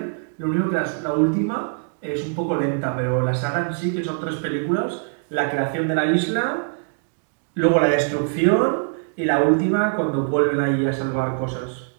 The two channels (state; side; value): silent; left; digital silence